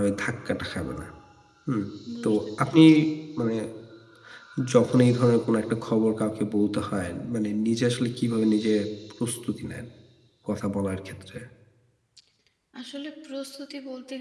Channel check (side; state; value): both; identical; correlation 1.00